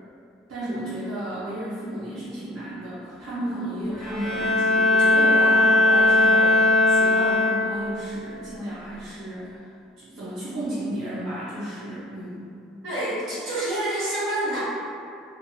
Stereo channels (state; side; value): normal; both; correlation 0.51